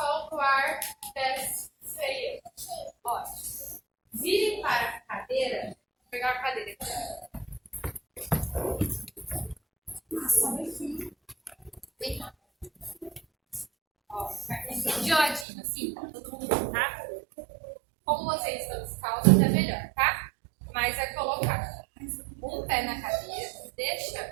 solta o ar, desce, freia. Ótimo. Vire para a cadeira. Vou pegar a cadeira aqui. Vem cá. Ó, de ladinho, assim, todo mundo, tá? Como vocês estão descalços, é melhor, tá? Mas é colocar um pé na cadeira,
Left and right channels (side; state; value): left; drops out; at 15.5 s